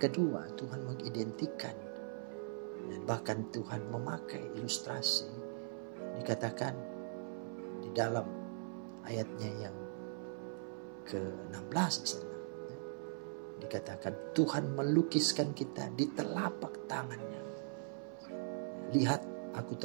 Tuhan mengidentikan Dan bahkan Tuhan memakai ilustrasi, dikatakan di dalam ayatnya yang ke-16 di sana, dikatakan Tuhan melukiskan kita di telapak tangannya. Lihat, aku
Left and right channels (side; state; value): left; silent; 50 dB below the other